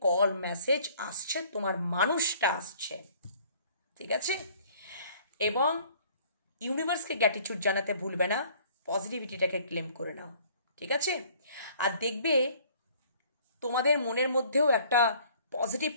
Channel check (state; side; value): inverted; both; correlation -0.55